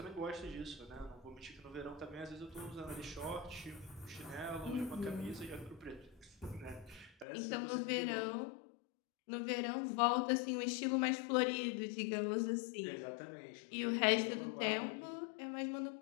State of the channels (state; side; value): drops out; right; at 7.2 s